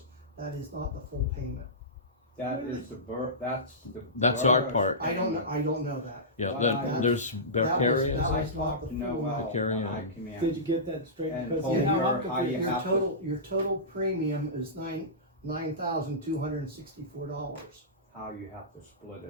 That is not the full payment. That is That's our borough's part. I don't know that. Yeah, Well, then there's that was- Vicarious, that I was not talked the to full Noel Carry when I on. came in. Did you get that straight? And Because told you know, her I'm how you confused. have to- Your total premium is $9,264. How you have to split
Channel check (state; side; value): normal; both; correlation -0.18